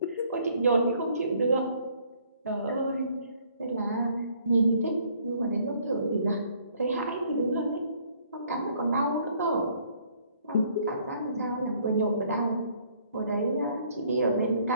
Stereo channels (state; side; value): inverted; both; correlation -0.63